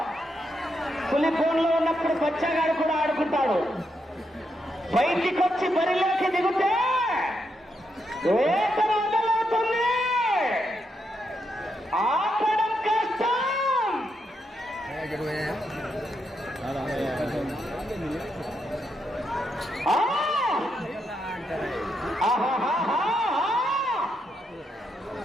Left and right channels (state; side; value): normal; both; correlation 0.81